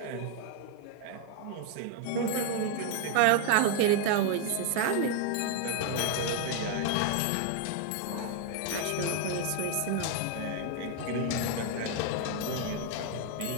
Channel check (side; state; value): both; different; correlation 0.00